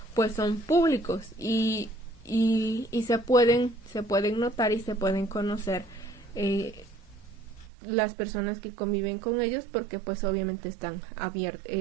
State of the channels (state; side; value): drops out; left; at 7.7 s